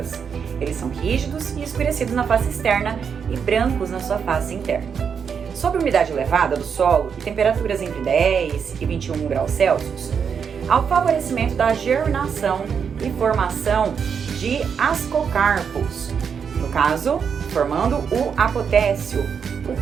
Eles são rígidos e escurecidos na face externa e brancos na sua face interna. Sob umidade elevada do solo e temperaturas entre 10 e 21 graus Celsius, há o favorecimento da germinação e formação de ascocarpos, no caso, formando o apotécio,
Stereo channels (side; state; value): left; quieter; 6.8 dB